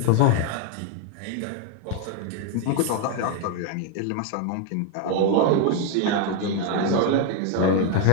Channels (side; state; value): both; different; correlation 0.01